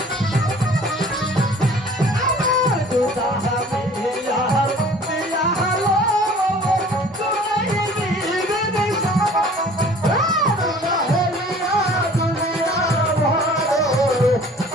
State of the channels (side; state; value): both; normal; correlation 0.49